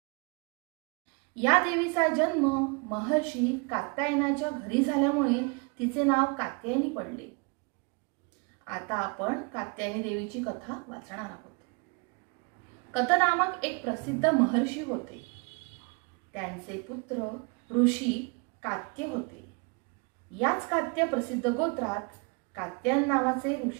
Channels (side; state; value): left; quieter; 31.8 dB